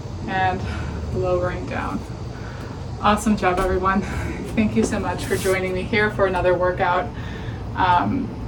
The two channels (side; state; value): both; identical; correlation 1.00